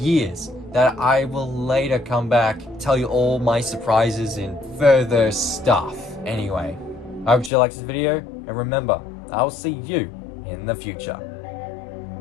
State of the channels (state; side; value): drops out; right; at 7.5 s